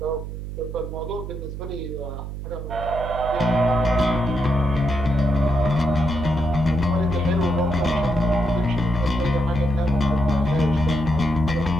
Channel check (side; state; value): right; noise; hum, 8 dB below the sound